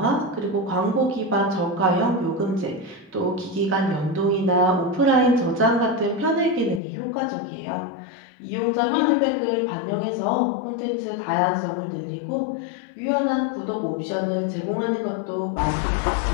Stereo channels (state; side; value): drops out; right; at 6.8 s